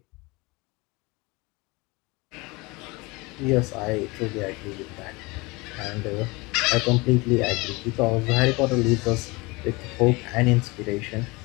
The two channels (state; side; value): quieter; right; 24.8 dB